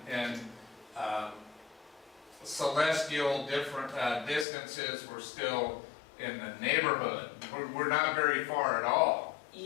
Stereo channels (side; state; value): right; drops out; at 4.5 s